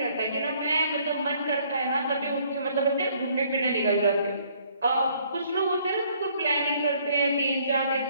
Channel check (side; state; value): both; inverted; correlation -0.63